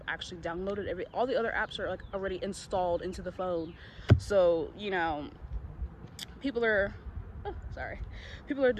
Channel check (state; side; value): identical; both; correlation 1.00